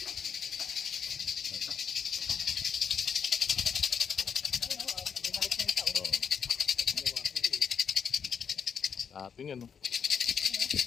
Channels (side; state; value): right; quieter; 6.9 dB